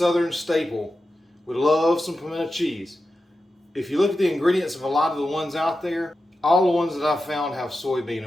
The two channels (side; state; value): both; normal; correlation 0.91